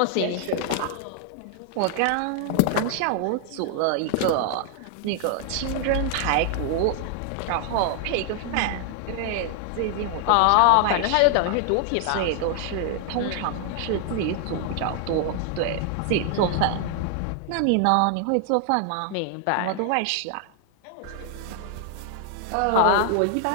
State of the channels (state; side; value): different; both; correlation 0.00